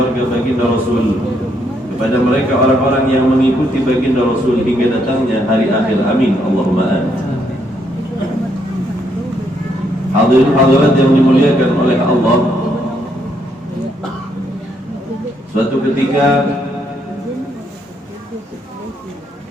baginda Rasul, kepada mereka orang-orang yang mengikuti baginda Rasul hingga datangnya hari akhir. Amin, Allahumma amin. Hadirin hadirat yang dimuliakan oleh Allah, suatu ketika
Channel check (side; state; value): both; normal; correlation 0.74